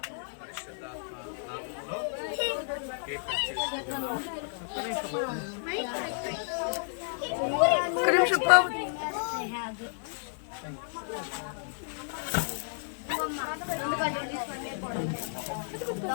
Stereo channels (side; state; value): right; silent; 56 dB below the other